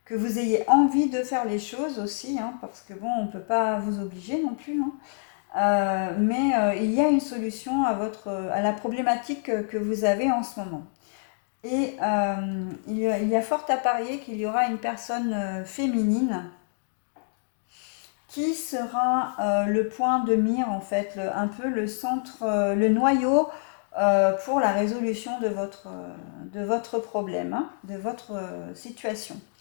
que vous ayez envie de faire les choses aussi, hein, parce que bon, on ne peut pas vous obliger non plus, hein. Mais il y a une solution à la problématique que vous avez en ce moment. Et il y a fort à parier qu'il y aura une personne féminine qui sera le point de mire, en fait, un peu le centre, le noyau pour la résolution de votre problème, hein, de votre situation.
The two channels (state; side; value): silent; right; digital silence